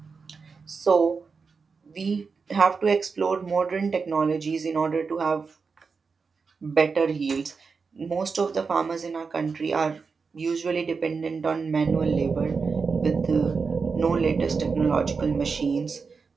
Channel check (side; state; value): left; quieter; 5.0 dB